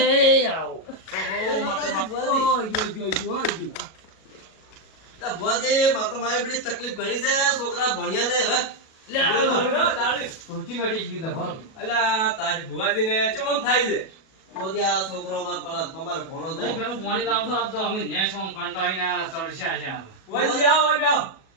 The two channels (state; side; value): late; right; 37 ms